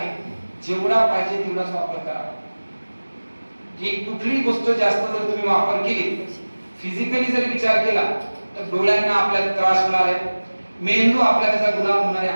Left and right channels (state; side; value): inverted; both; correlation -1.00